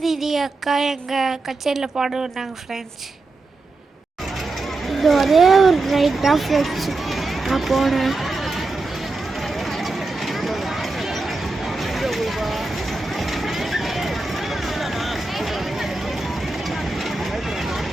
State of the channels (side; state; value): left; quieter; 3.3 dB